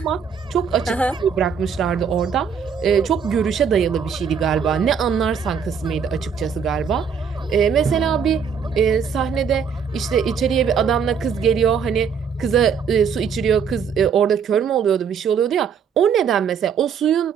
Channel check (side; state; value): left; quieter; 6.7 dB